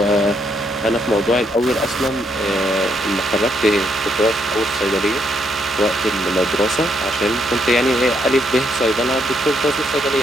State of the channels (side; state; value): both; normal; correlation 0.75